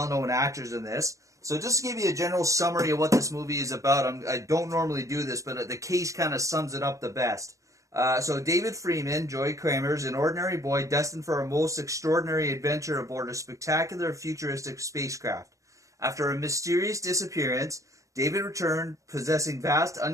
actors in this. So just to give you a general summary of what this movie is about, I don't normally do this, but the case kind of sums it up the best. So David Freeman, Joey Kramer, is an ordinary boy destined for a most extraordinary adventure aboard a spectacular futuristic spacecraft. After a mysterious disappearance, David returned possessing vast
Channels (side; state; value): left; late; 0.16 ms